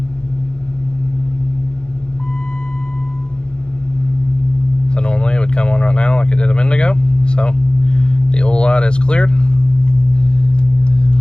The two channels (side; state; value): right; late; 0.050 ms